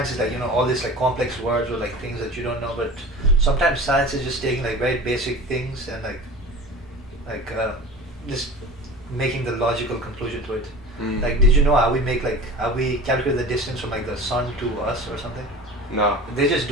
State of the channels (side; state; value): both; normal; correlation 0.37